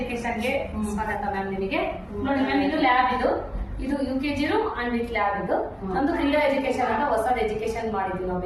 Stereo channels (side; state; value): both; identical; correlation 1.00